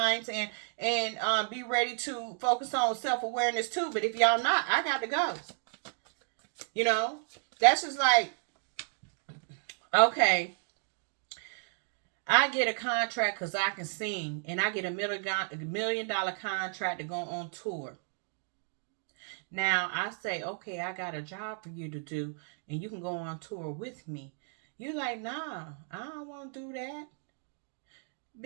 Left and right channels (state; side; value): silent; left; 56 dB below the other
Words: and be ready to focus on self-awareness too. But if y'all not, I got to go. You know? That's just like, okay, I get a contract because I can sing, and I get $1 million contract to go on tour. Now, I say, okay, I got a job for you to do, and you can go on tour with me. You're like, nah, I don't want to do that.